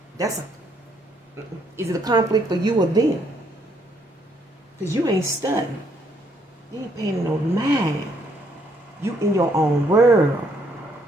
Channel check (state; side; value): normal; both; correlation 0.69